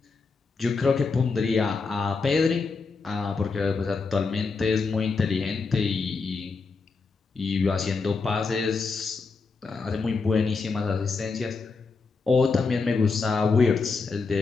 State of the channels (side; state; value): right; quieter; 4.5 dB